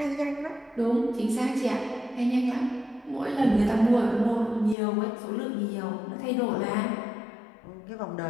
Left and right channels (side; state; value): right; drops out; at 4.8 s